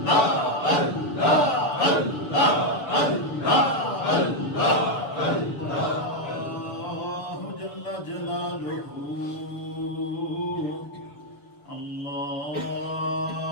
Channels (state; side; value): late; right; 6.9 ms